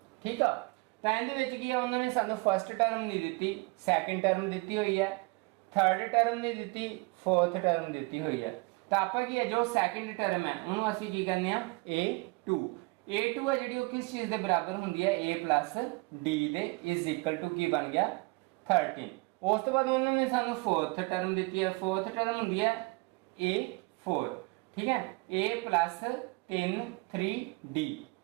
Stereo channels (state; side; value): quieter; left; 27.9 dB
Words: ठीक है, तो ਇਹਦੇ ਵਿੱਚ ਕੀ ਆ ਉਹਨਾਂ ਨੇ ਸਾਨੂੰ ਫਸਟ ਟਰਮ ਨਹੀਂ ਦਿੱਤੀ, ਸੈਕੰਡ ਟਰਮ ਦਿੱਤੀ ਹੋਈ ਹੈ, ਥਰਡ ਟਰਮ ਨਹੀਂ ਦਿੱਤੀ, ਫੋਰਥ ਟਰਮ ਦਿੱਤੀ ਹੋਈ ਹੈ। ਤਾਂ ਆਪਾਂ ਕੀ ਹੈ ਜੋ ਸੈਕੰਡ ਟਰਮ ਹੈ ਉਹਨੂੰ ਅਸੀਂ ਕੀ ਕਹਿੰਦੇ ਆ a2। a2 ਹੈ ਜਿਹੜੀ ਉਹ ਕਿਸ ਚੀਜ਼ ਦੇ ਬਰਾਬਰ ਹੁੰਦੀ ਹੈ a plus d ਦੇ ਇਜ਼ ਇਕੁਅਲ ਟੂ ਕੀ ਬਣ ਗਿਆ 13। ਉਸ ਤੋਂ ਬਾਅਦ ਉਹਨਾਂ ਨੇ ਸਾਨੂੰ ਫੋਰਥ ਟਰਮ ਦਿੱਤੀ ਹੈ, ਫੋਰਥ ਟਰਮ ਹੁੰਦੀ ਹੈ a4। ठीक है, a plus 3 3d।